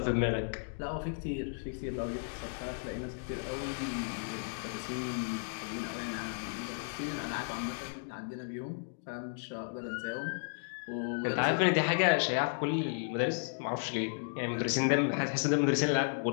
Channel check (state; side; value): silent; right; digital silence